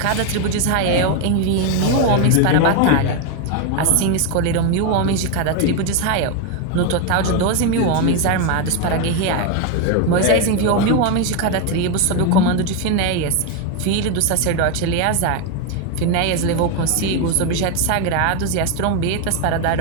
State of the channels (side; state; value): both; different; correlation 0.02